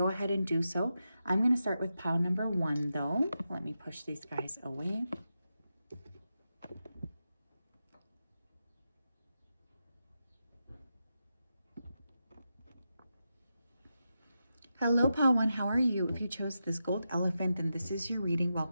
ahead and do so. I'm going to start with pile number 1, though. Let me push these guys away. Hello, pile 1, how are you? If you chose this gold elephant, then this is your reading.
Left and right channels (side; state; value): both; inverted; correlation -0.88